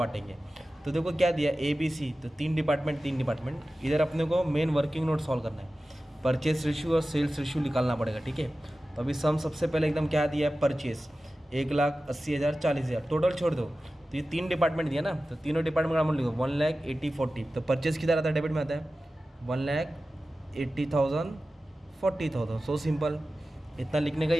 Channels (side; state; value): both; normal; correlation 0.95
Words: तो देखो क्या दिया, ABC, तो 3 डिपार्टमेंट। इधर अपने को मेन वर्किंग नोट सॉल्व करना है। परचेस रेशियो और सेल्स रेशियो निकालना पड़ेगा, ठीक है। तो अभी सम सबसे पहले एकदम क्या दिया है, परचेस 1,80,000 40,000, टोटल छोड़ दो। तो ये 3 डिपार्टमेंट दिया ना, तो तीनों डिपार्टमेंट का अमाउंट लिखो 1,80,40। तो परचेस किधर आता है, डेबिट में आता है। 1,80,000 40,000, सो सिंपल। इतना लिखने का ही